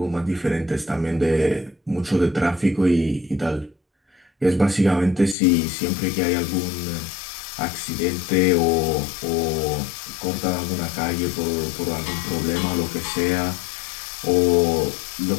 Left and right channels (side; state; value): right; drops out; at 5.4 s